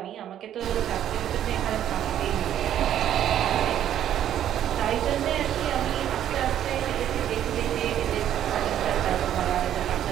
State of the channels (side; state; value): left; quieter; 10.8 dB